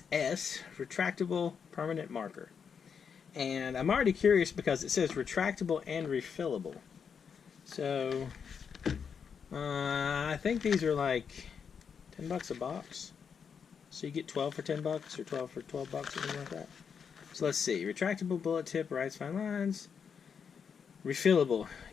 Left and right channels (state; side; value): quieter; right; 6.7 dB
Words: S Retractable Permanent Marker. And I'm already curious because it says retractable and refillable. So, I think these are like 10 bucks a box. So you get 12 for 10 bucks or 12 for 12 bucks or something like that. So let's see. Retractable bullet tip, writes fine lines. Refillable.